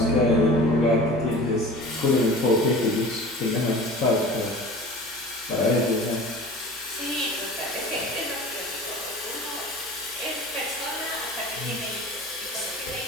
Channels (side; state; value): both; normal; correlation 0.39